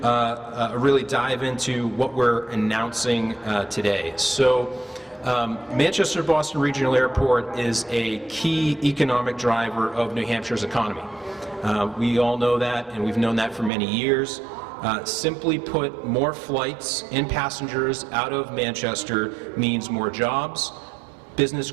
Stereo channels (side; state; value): left; drops out; at 13.7 s